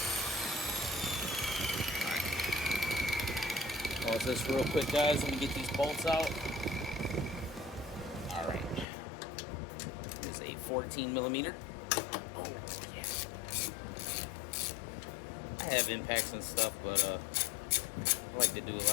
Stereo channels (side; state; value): right; drops out; at 8.8 s